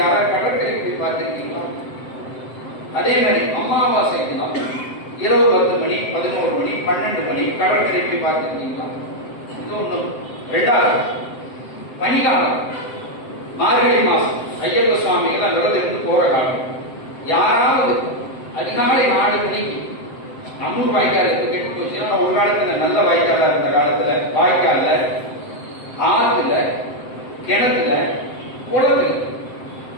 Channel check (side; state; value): right; late; 7.7 ms